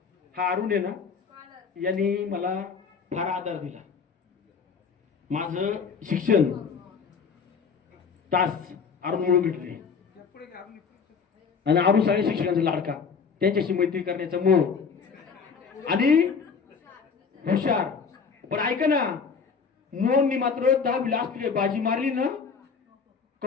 हा अरुण आहे ना, यांनी मला फार आधार दिला. माझं शिक्षण तास अरुण म्हणून भेटले आणि अरुण सगळ्या शिक्षकांचा लाडका, त्यांच्याशी मैत्री करण्याचा मोह आणि हुशार. पण ऐका ना, मोहननी मात्र 10 लास्ट बाजी मारली ना,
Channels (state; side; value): quieter; right; 5.8 dB